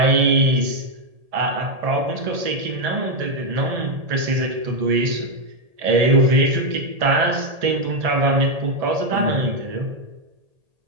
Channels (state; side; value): late; left; 1.8 ms